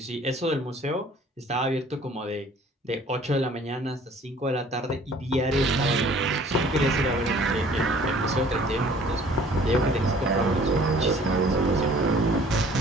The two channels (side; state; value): both; normal; correlation 0.53